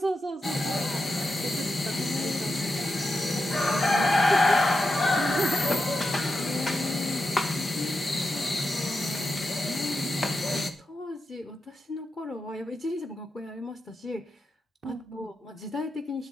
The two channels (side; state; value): both; normal; correlation 0.87